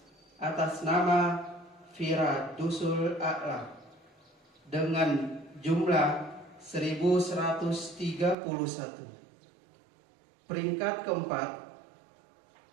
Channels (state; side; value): drops out; left; at 8.3 s